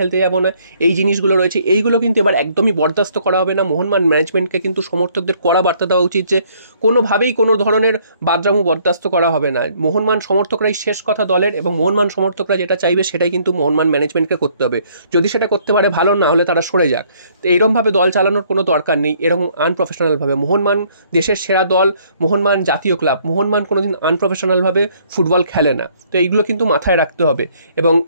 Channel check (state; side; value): inverted; both; correlation -0.64